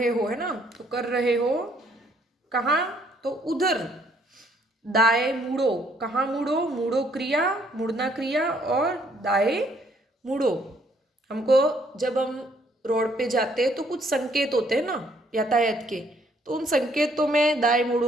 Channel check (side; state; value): both; normal; correlation 0.66